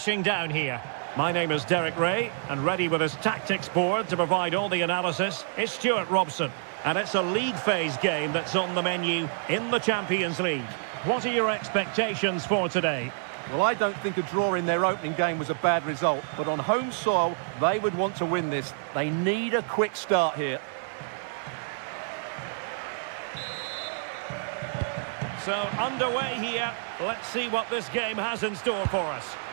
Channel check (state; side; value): silent; left; 59 dB below the other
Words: down here. My name is Derek Ray, and ready with his tactics board to provide all the analysis is Stuart Robson. And it's a league phase game that's on the menu in the Champions League. What are your expectations for today? Well, I don't think a draw in their opening game was a bad result, but on home soil, they would want to win this. They need a quick start here. So, underway here. Let's see what this game has in store for us.